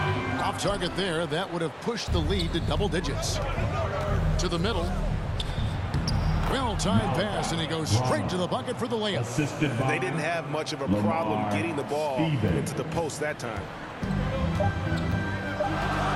Off target there. That would have pushed the lead to double digits. To the middle. Well-timed pass, and he goes straight to the bucket for the layup. They didn't have much of a problem getting the ball into the post that time.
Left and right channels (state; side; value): identical; both; correlation 1.00